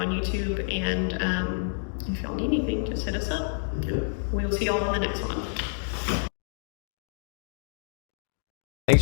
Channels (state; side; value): silent; right; digital silence